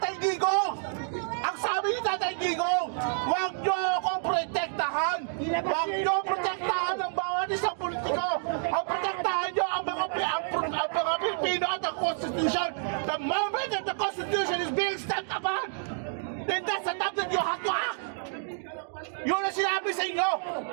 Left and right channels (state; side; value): silent; left; digital silence